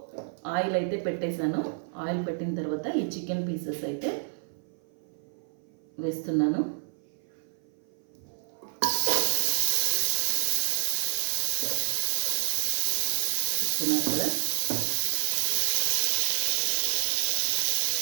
ఆయిల్ అయితే పెట్టేశాను. ఆయిల్ పెట్టిన తర్వాత ఈ చికెన్ పీసెస్ అయితే వేస్తున్నాను. చూస్తున్నారు కదా,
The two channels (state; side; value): silent; left; 55 dB below the other